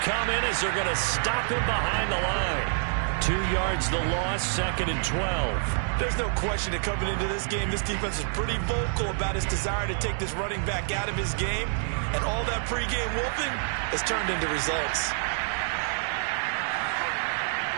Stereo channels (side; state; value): left; silent; 60 dB below the other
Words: in as they're going to stop him behind the line. 2 yards the loss, 2nd and 12. There's no question that coming into this game, this defense is pretty vocal about its desire to take this running back out of his game. And all that pregame whooping has turned into results.